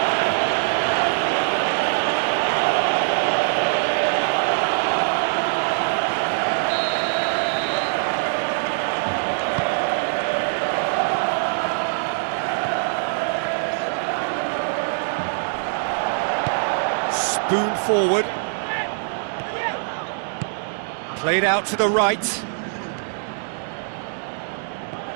Spoon forward. Played out to the right.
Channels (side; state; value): left; silent; digital silence